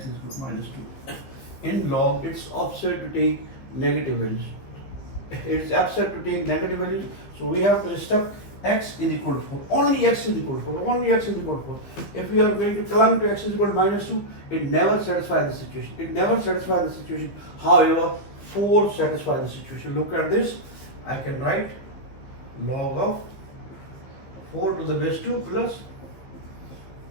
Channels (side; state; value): right; late; 15 ms